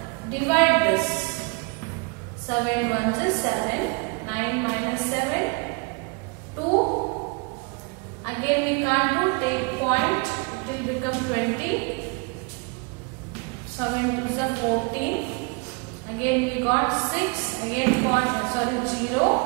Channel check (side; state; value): left; quieter; 32.5 dB